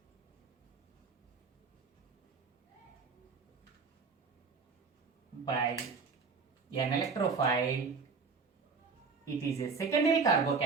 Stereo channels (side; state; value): left; quieter; 4.9 dB